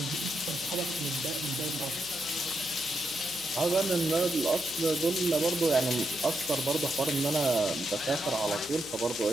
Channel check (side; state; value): left; noise; hum, 23 dB below the sound